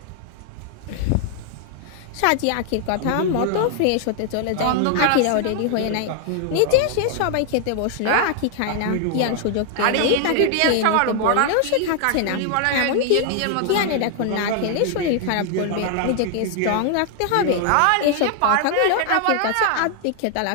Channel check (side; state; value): both; different; correlation 0.00